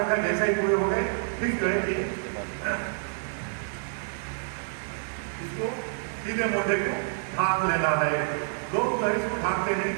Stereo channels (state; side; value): silent; left; 59 dB below the other